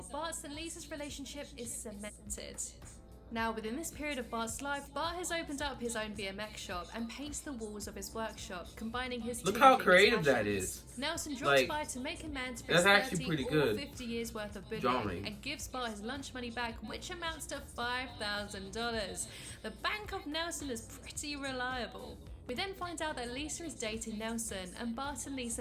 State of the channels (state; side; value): identical; both; correlation 1.00